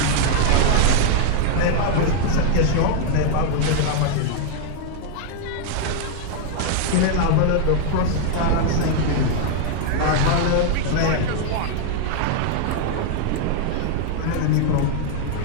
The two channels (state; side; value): different; both; correlation 0.00